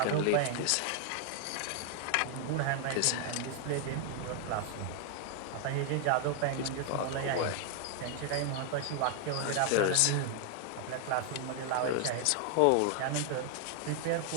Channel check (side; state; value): both; different; correlation 0.00